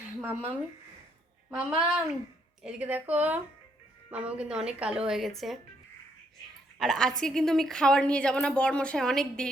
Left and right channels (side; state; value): both; normal; correlation 0.72